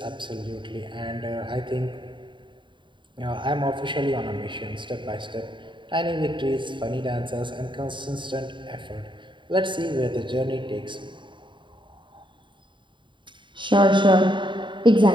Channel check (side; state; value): left; late; 0.23 ms